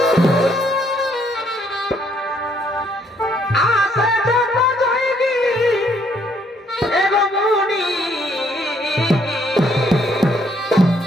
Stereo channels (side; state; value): both; normal; correlation 0.68